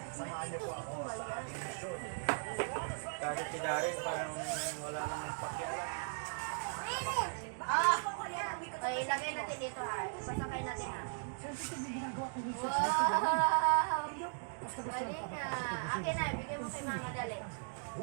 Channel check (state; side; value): silent; left; digital silence